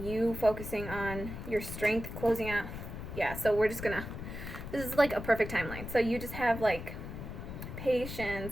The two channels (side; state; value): left; noise; rumble, 8 dB below the sound